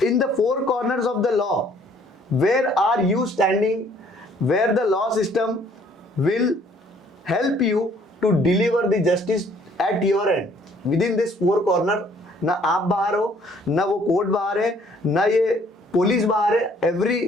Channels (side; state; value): both; normal; correlation 0.61